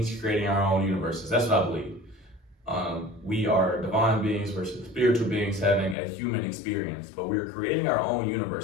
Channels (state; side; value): drops out; right; at 6.0 s